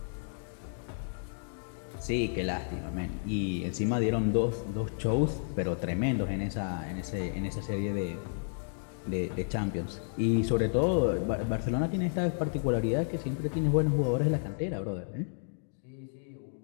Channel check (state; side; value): silent; right; digital silence